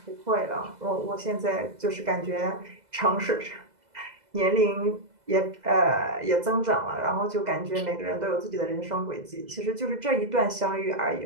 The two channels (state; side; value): late; left; 2.0 ms